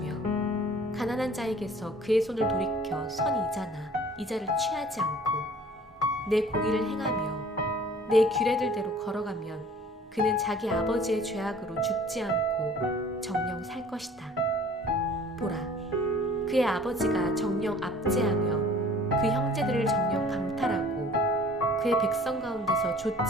가난한 자에게서 그의 손을 돌이켜 선 이자나 이자를 취하지 않고 내 공의를 행하며 내 규례들대로 걸어가면 그는 자기 아버지의 죄악으로 죽지 않고 정녕 살 것이다. 보라, 그의 아버지가 정녕 압제하며 그 형제들을 정녕 강탈하고 그의 백성 가운데서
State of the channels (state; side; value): normal; both; correlation 0.50